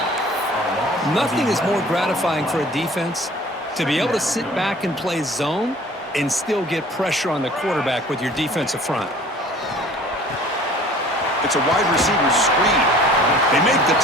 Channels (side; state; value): both; normal; correlation 0.49